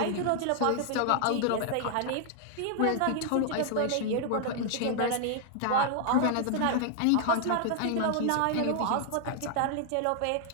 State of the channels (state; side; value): different; both; correlation 0.00